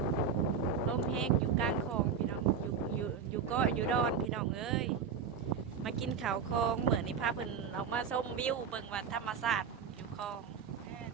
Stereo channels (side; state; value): left; quieter; 6.5 dB